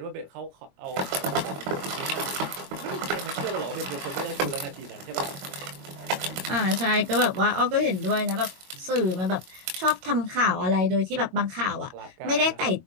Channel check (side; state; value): left; late; 22 ms